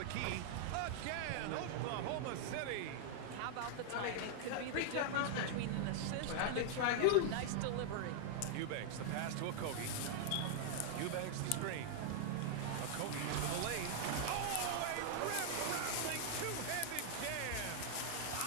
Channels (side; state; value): both; different; correlation -0.01